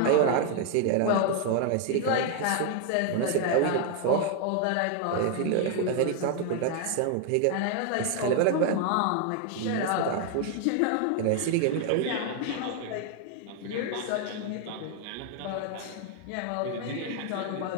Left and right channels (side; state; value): both; different; correlation 0.00